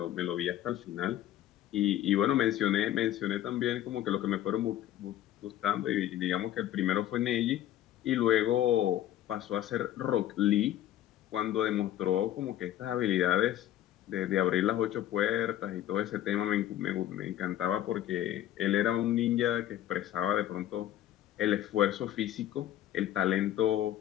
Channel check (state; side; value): quieter; right; 12.6 dB